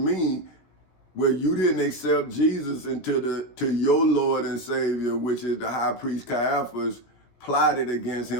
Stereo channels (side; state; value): right; late; 17 ms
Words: well, you didn't accept Jesus to your Lord and Savior, which is the high priest Caiaphas, plotted against